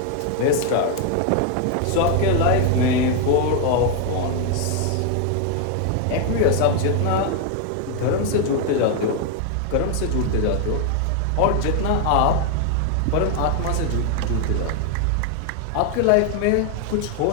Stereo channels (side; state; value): both; different; correlation 0.01